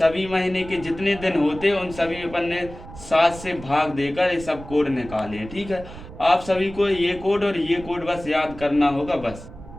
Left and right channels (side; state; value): right; noise; rumble, 15 dB below the sound